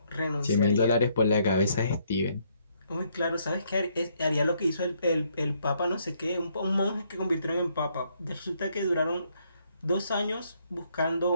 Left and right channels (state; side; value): inverted; both; correlation -0.71